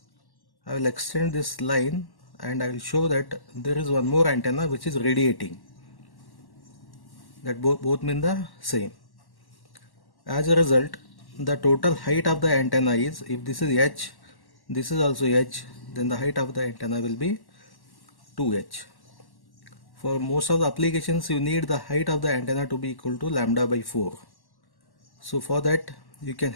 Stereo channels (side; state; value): right; late; 1.1 ms